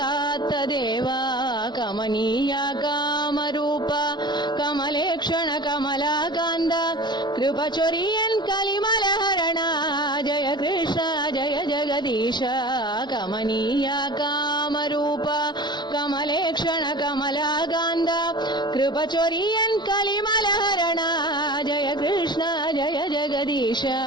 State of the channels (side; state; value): right; late; 0.21 ms